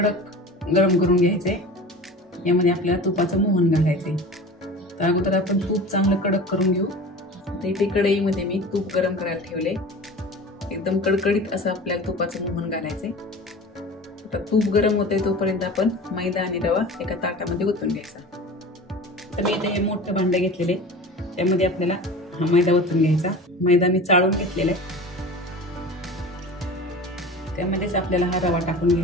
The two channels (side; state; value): both; normal; correlation 0.36